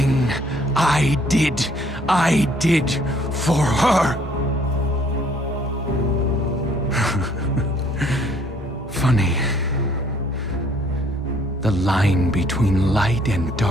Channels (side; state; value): both; normal; correlation 0.62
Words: I did for her. Funny. The line between light and